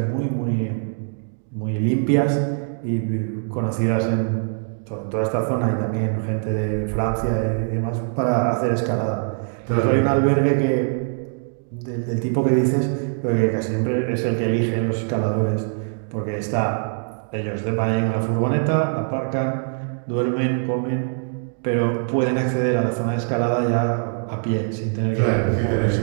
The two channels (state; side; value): silent; left; digital silence